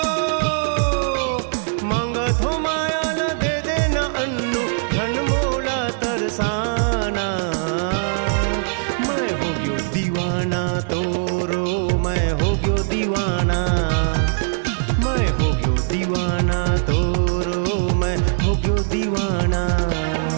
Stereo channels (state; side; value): silent; left; digital silence